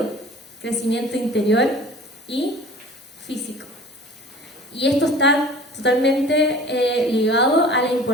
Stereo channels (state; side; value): normal; both; correlation 0.44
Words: Crecimiento interior y físico. Y esto está totalmente ligado a la